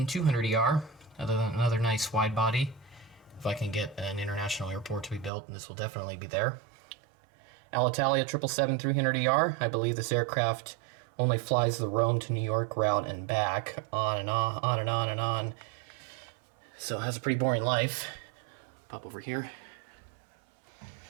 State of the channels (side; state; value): left; drops out; at 5.3 s